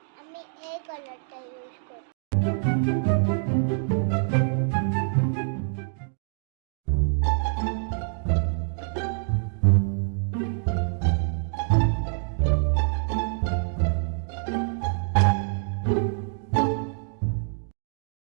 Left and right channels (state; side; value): silent; left; digital silence